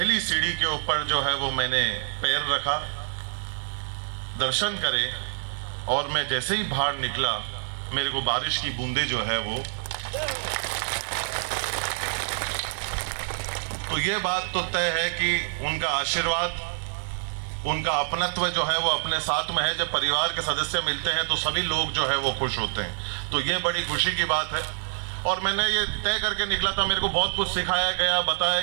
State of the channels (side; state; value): left; silent; 61 dB below the other